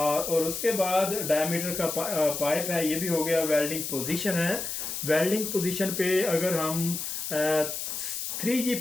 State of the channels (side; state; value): left; noise; hiss, 4 dB below the sound